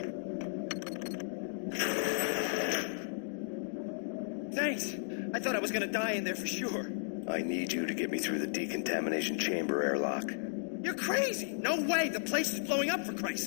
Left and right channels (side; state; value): right; silent; digital silence